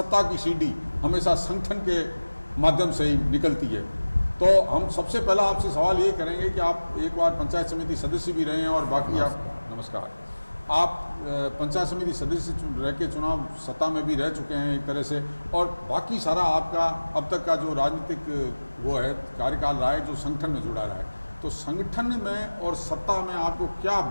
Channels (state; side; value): inverted; both; correlation -1.00